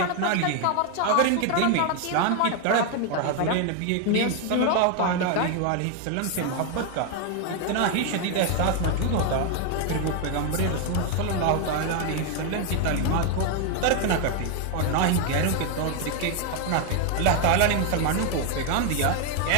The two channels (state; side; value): different; both; correlation 0.01